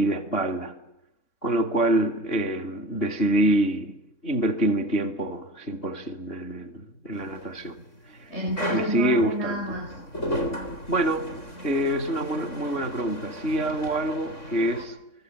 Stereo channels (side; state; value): right; late; 3.6 ms